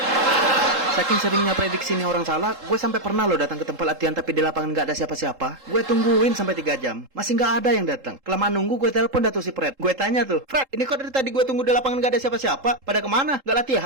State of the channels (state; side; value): late; left; 3.7 ms